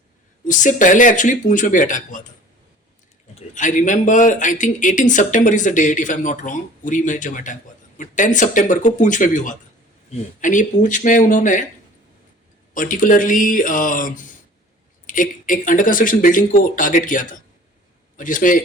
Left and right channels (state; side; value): normal; both; correlation 0.47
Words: उससे पहले एक्चुअली पूंछ में भी अटैक हुआ था। आई रिमेंबर, आई थिंक 18 सितंबर is the date if I am not wrong, Uri में जब अटैक हुआ था, बट 10 सितंबर को पूंछ में भी हुआ था। एंड ये पूंछ में उन्होंने पर्टिकुलरली एक अंडर कंस्ट्रक्शन बिल्डिंग को टारगेट किया था, और जिसमें